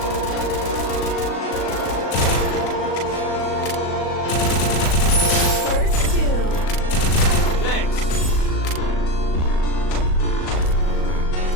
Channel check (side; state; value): right; late; 38 ms